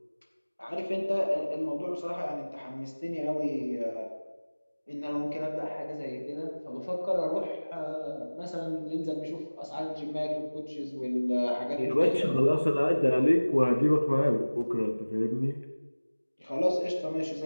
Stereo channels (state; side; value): inverted; both; correlation -1.00